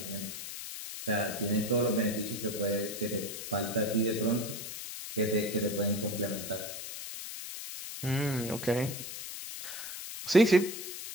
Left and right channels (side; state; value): left; noise; hiss, 8 dB below the sound